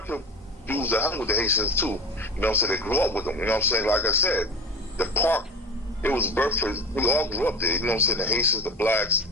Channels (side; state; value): both; normal; correlation 0.31